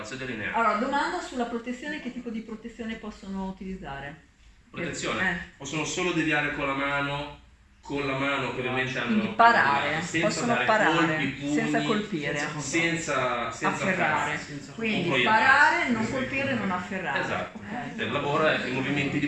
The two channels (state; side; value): identical; both; correlation 1.00